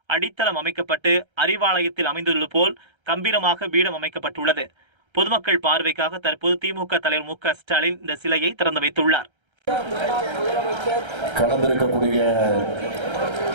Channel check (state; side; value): late; left; 1.3 ms